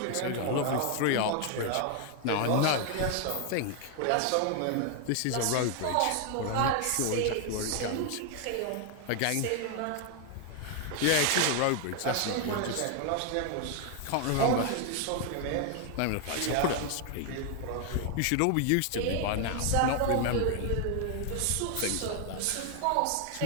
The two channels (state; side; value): different; both; correlation 0.00